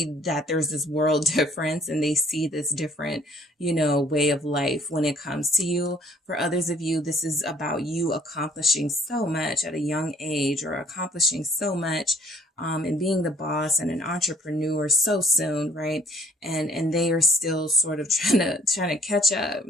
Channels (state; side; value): normal; both; correlation 0.59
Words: that there's this world difference, and they see this different, way of life when it comes to you. For others of you, this is about you accomplishing so much at a young age, or accomplishing so much and being the boss and an entrepreneur so soon, right? And they are still sort of trying to catch up,